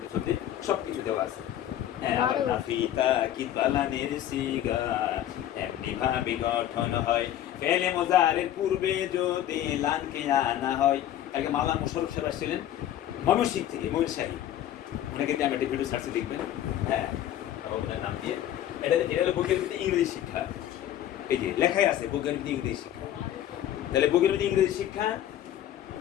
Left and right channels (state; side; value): quieter; right; 11.8 dB